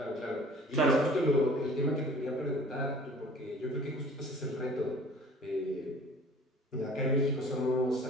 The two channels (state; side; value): normal; both; correlation 0.49